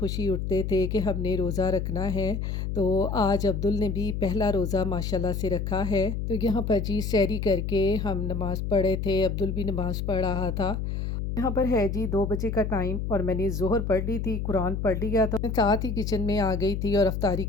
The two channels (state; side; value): noise; left; hum, 2 dB below the sound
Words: उठते थे कि हमने रोज़ा रखना है। तो आज अब्दुल ने भी पहला रोज़ा माशाल्लाह से रखा है। तो यहाँ पर जी सहरी करके हम नमाज़ पढ़े थे, अब्दुल भी नमाज़ पढ़ रहा था। यहाँ पर है जी 2 बजे का टाइम और मैंने ज़ोहर पढ़ ली थी, कुरान पढ़ लिया था। मैं साथ ही किचन में आ गई थी और अफ्तारी